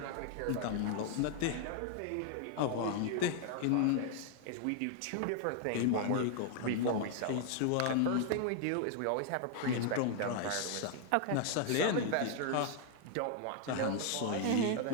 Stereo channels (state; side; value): different; both; correlation 0.00